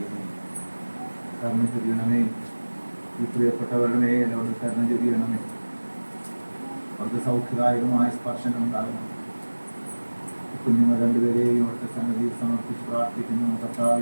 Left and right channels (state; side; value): inverted; both; correlation -1.00